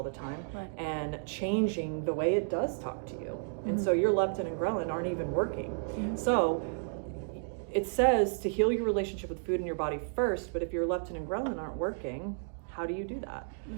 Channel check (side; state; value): left; silent; digital silence